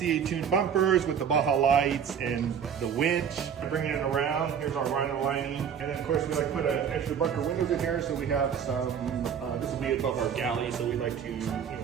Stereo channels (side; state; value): left; quieter; 7.7 dB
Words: tuned bumpers with the Baja lights and the winch, bringing it around. Here's our Rhino lining. And then of course we like to put an extra bunker windows in here, so we have some, this will be above our galley, so we like to,